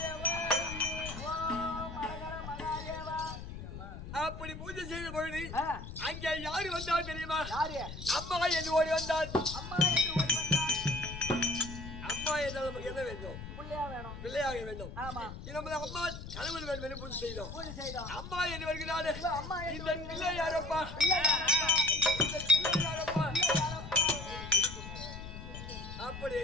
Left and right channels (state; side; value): noise; left; rumble, 10 dB below the sound